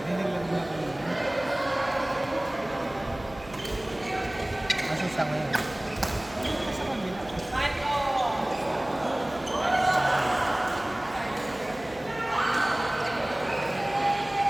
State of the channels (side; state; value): right; noise; hum, 20 dB below the sound